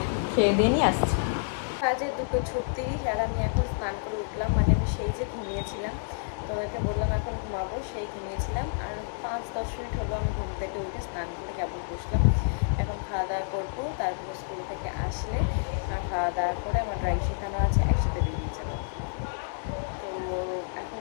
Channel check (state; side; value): silent; right; digital silence